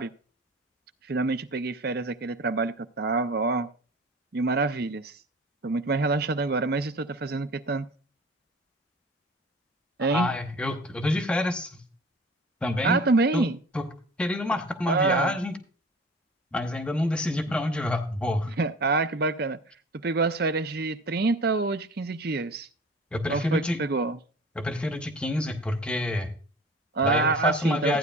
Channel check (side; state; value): both; normal; correlation 0.41